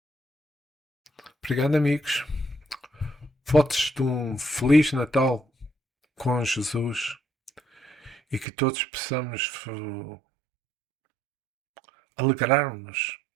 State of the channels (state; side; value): drops out; left; at 8.5 s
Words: Obrigado, amigos. Votos de um Feliz Natal com Jesus e que todos possamos alegrar-nos